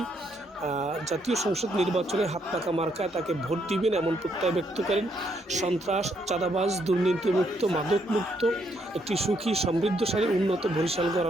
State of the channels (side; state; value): both; normal; correlation 0.74